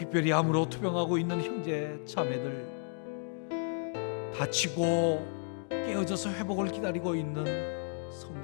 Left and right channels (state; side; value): silent; right; 56 dB below the other